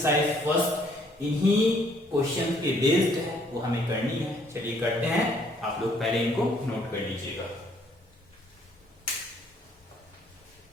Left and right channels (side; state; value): both; normal; correlation 0.65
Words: फर्स्ट इन्हीं क्वेश्चन के बेस्ड है, वो हमें करनी है। चलिए करते हैं, आप लोग पहले इनको नोट कर लीजिएगा।